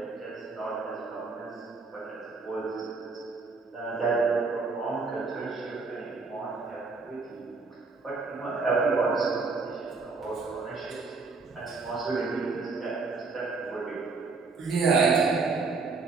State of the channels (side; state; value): left; quieter; 4.1 dB